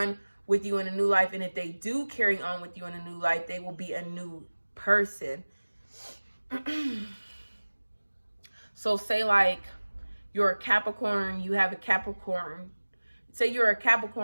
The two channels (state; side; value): inverted; both; correlation -1.00